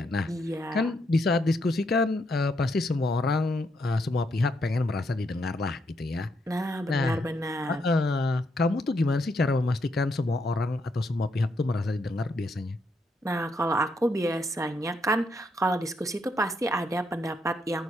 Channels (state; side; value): normal; both; correlation 0.77